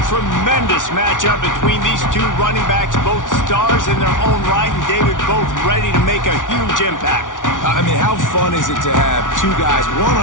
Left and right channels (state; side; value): late; right; 0.88 ms